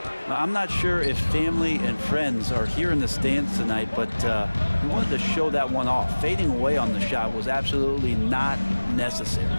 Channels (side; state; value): both; inverted; correlation -1.00